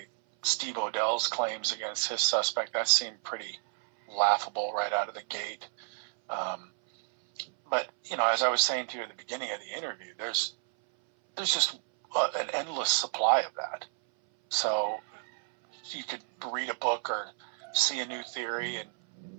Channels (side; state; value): left; silent; 57 dB below the other